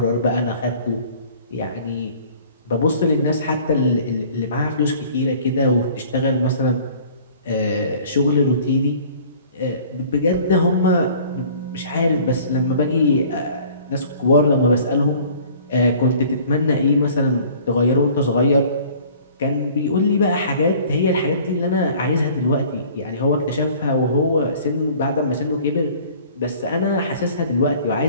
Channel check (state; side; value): inverted; both; correlation -0.50